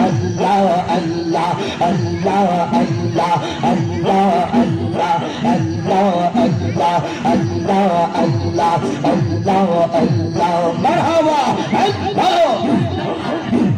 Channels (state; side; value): identical; both; correlation 1.00